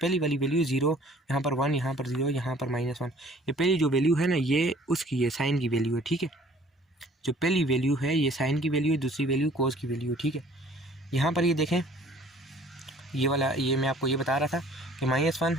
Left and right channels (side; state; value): both; normal; correlation 0.54